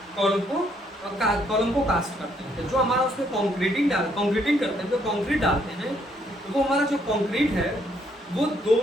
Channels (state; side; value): normal; both; correlation 0.70